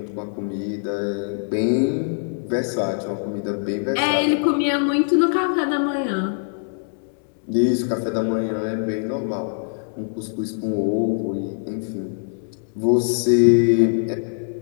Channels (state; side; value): silent; right; digital silence